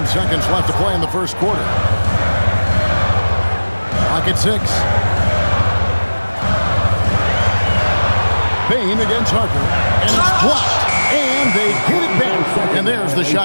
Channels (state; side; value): inverted; both; correlation -1.00